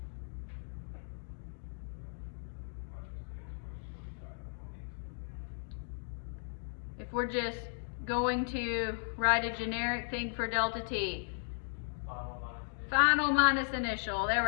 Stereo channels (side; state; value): right; silent; digital silence